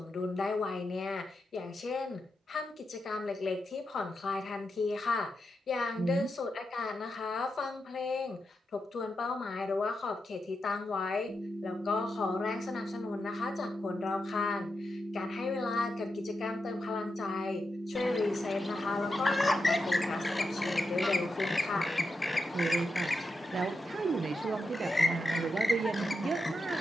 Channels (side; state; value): both; normal; correlation 0.87